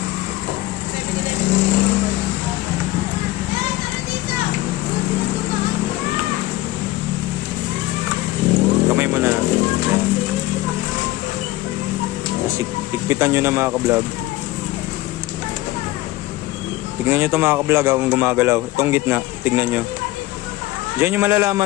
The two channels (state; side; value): quieter; right; 17.8 dB